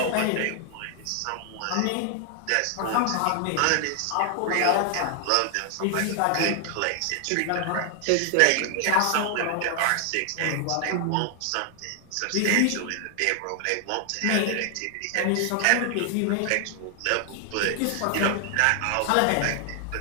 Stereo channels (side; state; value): both; different; correlation 0.00